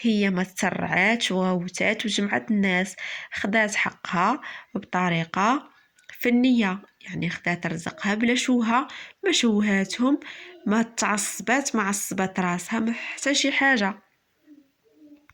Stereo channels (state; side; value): identical; both; correlation 1.00